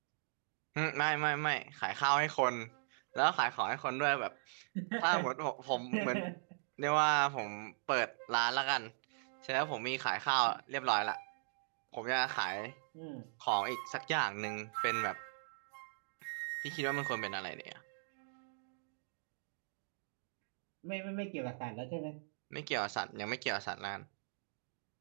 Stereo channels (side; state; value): left; silent; digital silence